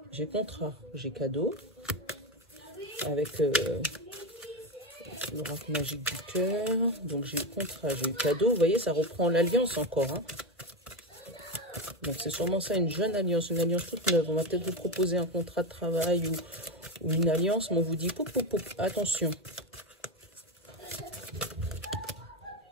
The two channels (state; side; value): normal; both; correlation 0.15